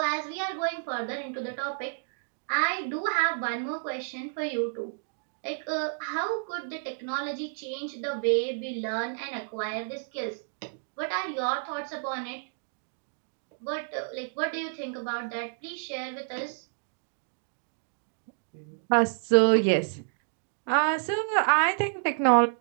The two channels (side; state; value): left; silent; digital silence